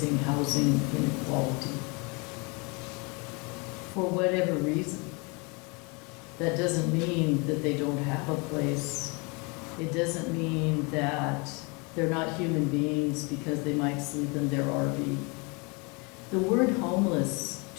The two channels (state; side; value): quieter; right; 30.4 dB